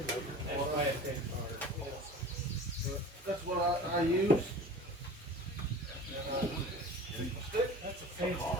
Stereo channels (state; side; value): normal; both; correlation 0.38